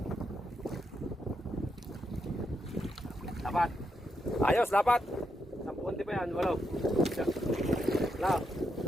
Lapat. Ayos, lapat. 10 pa yan, walo. Wala.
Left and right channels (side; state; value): both; normal; correlation 0.82